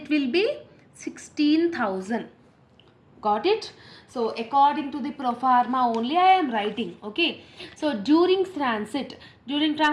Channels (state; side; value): identical; both; correlation 1.00